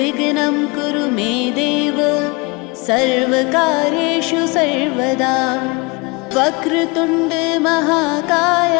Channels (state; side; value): quieter; right; 27.6 dB